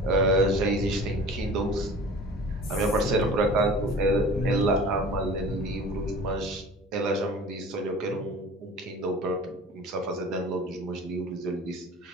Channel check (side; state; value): both; normal; correlation 0.41